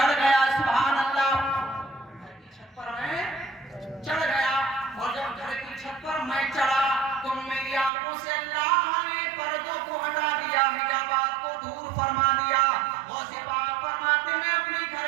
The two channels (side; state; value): left; drops out; at 7.9 s